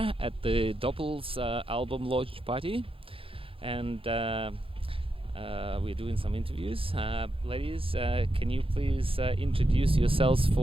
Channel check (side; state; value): left; late; 0.27 ms